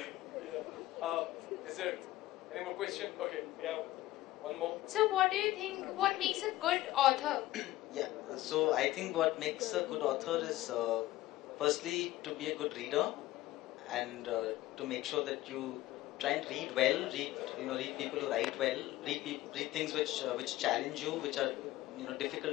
Is there any more question? Okay, we have one more. So what do you think, what makes a good author? Yeah, so I think what makes a good author is firstly to be a good reader, and to make sure that you try and read well, read people who write well, read things which challenge you, which are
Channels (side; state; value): right; quieter; 16.4 dB